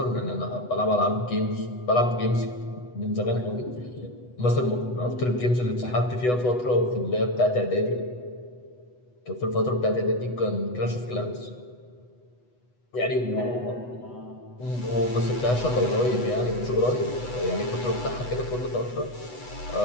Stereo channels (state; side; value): late; right; 8.1 ms